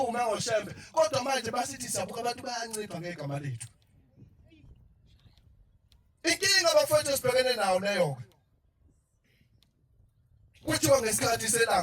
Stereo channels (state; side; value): identical; both; correlation 1.00